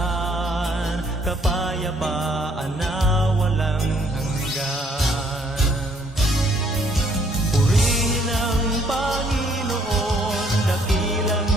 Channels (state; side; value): normal; both; correlation 0.65